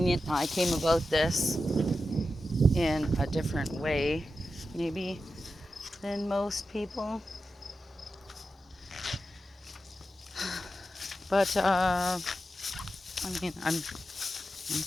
I came about this in a different way, maybe, than most people. But, I mean, I'm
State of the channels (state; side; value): normal; both; correlation 0.90